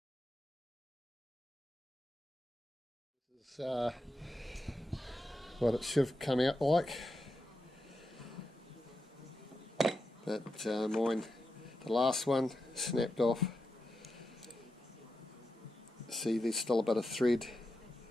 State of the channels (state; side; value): normal; both; correlation 0.88